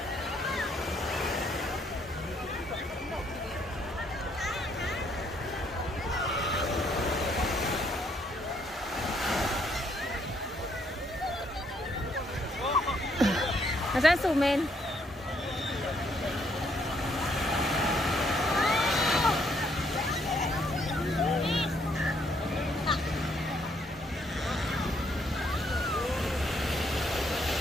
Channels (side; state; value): both; normal; correlation 0.70